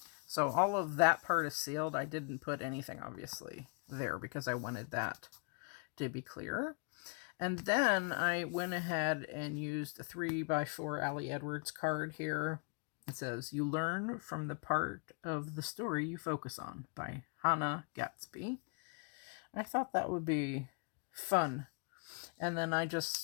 So all of that part is sealed. I didn't put anything, obviously, there because I wanted that to be clear. And then I went ahead and used a 3x4 Allie Edwards card here. It says, You Learn from the Part of the Story You Focus On by Hannah Gatsby. I thought that would be fun. And then I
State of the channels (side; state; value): right; quieter; 38.4 dB